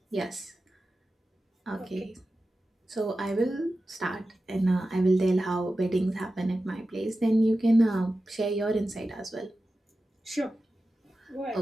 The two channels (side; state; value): both; normal; correlation 0.94